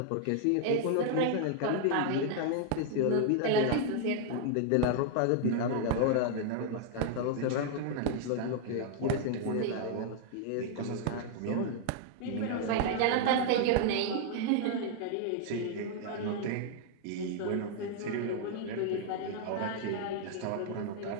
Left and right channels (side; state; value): both; different; correlation 0.00